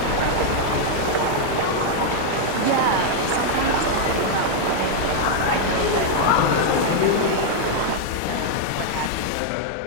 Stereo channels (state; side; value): different; both; correlation -0.01